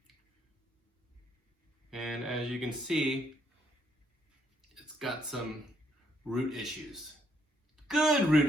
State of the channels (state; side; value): normal; both; correlation 0.72